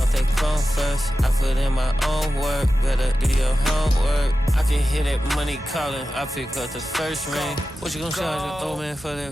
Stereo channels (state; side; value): normal; both; correlation 0.93